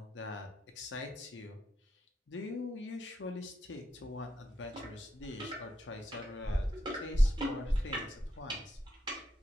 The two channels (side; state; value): both; normal; correlation 0.82